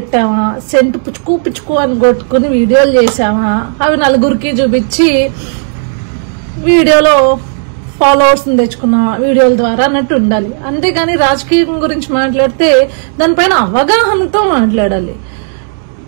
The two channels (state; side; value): silent; left; digital silence